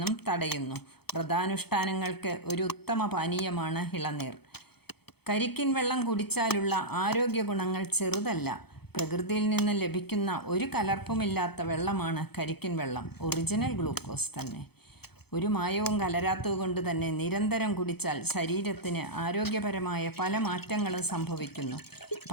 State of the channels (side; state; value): right; late; 0.97 ms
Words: തടയുന്നു. വ്രതാനുഷ്ഠാനങ്ങൾക്ക് ഒരു ഉത്തമ പാനീയമാണ് ഇളനീർ. കരിക്കിൻ വെള്ളം കുടിച്ചാലുള്ള ആരോഗ്യ ഗുണങ്ങൾ ചെറുതല്ല. പ്രകൃതിയിൽ നിന്ന് ലഭിക്കുന്ന ഒരു കലർപ്പുമില്ലാത്ത വെള്ളമാണ് കരിക്കിൻ വെള്ളം. ഒറിജിനൽ ഗ്ലൂക്കോസ് തന്നെ. ഒരു മായവും കലരാത്തതുകൊണ്ട് തന്നെ നിരന്തരം കുടിച്ചാൽ ശരീരത്തിന് ആരോഗ്യപരമായ പല മാറ്റങ്ങളും സംഭവിക്കുന്നു.